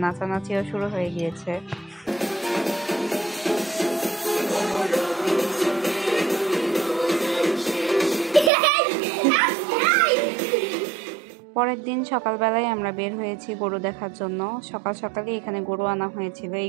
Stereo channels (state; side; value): drops out; left; at 8.5 s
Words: নাচানাচিও শুরু হয়ে গিয়েছে। পরের দিন সকালবেলায় আমরা বের হয়েছি গরু দেখার জন্য। সকাল সকালই এখানে গরু আনা হয়েছিল।